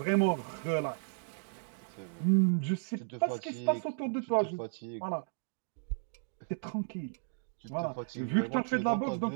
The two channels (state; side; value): silent; left; digital silence